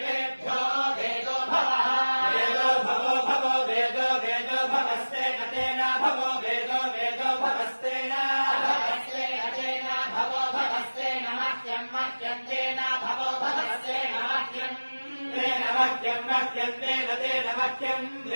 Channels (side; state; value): both; inverted; correlation -1.00